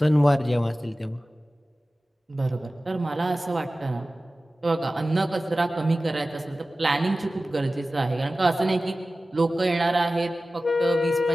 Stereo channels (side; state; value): both; normal; correlation 0.96